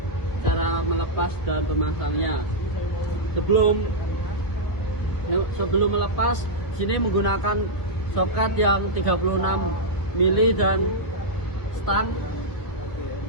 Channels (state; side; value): late; right; 1.6 ms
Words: cara melepas dan pemasangnya. Sebelum melepas, sini menggunakan soket yang 36 mili dan stang.